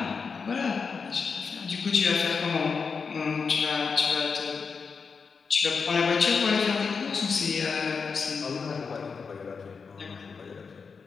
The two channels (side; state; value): right; quieter; 5.3 dB